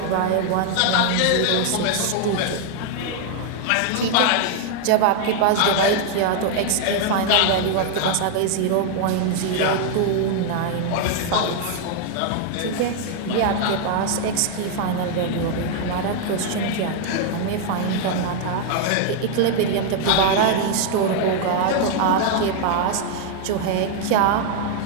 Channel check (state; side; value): different; both; correlation 0.00